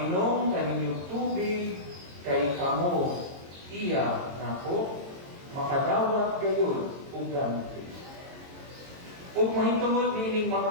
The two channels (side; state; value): left; late; 22 ms